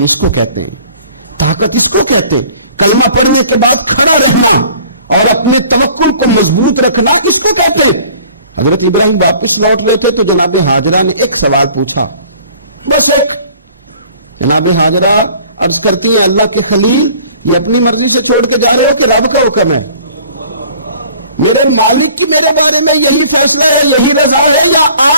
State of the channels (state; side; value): inverted; both; correlation -0.51